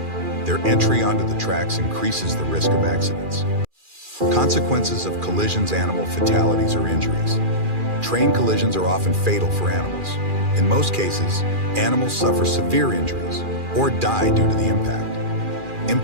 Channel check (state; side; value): late; left; 2.4 ms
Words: Their entry onto the tracks increases the risk of accidents. Consequences of collisions. Animal fatalities or injuries. Train collisions are often fatal for animals. In most cases, animals suffer severe injuries or die due to the impact.